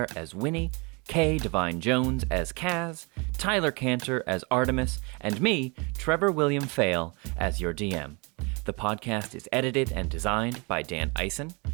as Winnie, Kay Devine-Jones as Kaz, Tyler Kanter as Artemis, and me, Trevor William Fayle, as your DM. The podcast is edited and designed by Dan Ison.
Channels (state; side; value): quieter; left; 30.1 dB